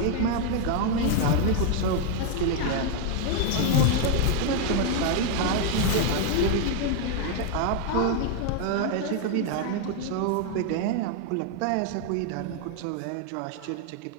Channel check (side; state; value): both; different; correlation 0.00